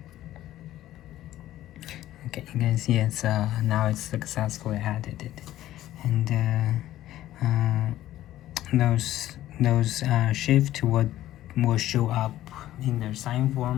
Okay, you can see it's now it's successfully added, and those shift will show up in the sign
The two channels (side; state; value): right; quieter; 13.9 dB